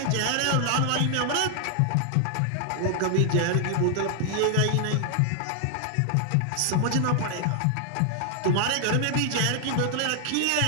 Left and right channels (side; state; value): both; different; correlation 0.00